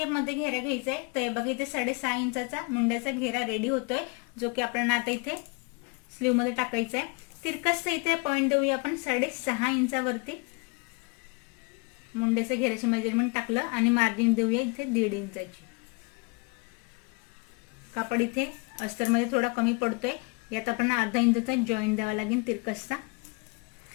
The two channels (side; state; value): right; quieter; 30.2 dB